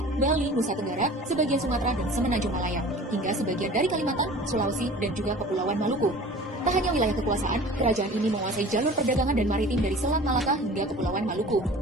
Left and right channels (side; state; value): both; normal; correlation 0.42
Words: Bali, Nusa Tenggara, sebagian Sumatera, dan Semenanjung Malaya, hingga sebagian dari Kalimantan, Sulawesi, dan juga Kepulauan Maluku. Tak hanya wilayah kekuasaan, kerajaan ini menguasai jalur perdagangan dan maritim dari Selat Malaka hingga Kepulauan Maluku.